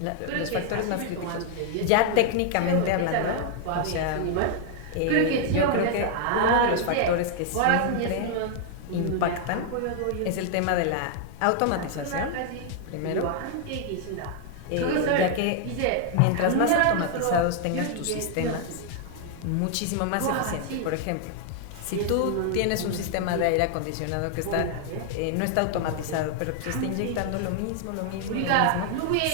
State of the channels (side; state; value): both; different; correlation 0.00